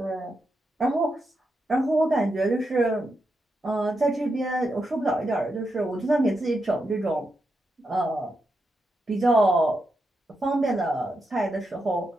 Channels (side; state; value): both; normal; correlation 0.85